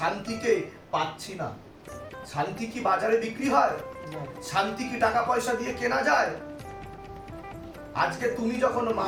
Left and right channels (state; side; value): identical; both; correlation 1.00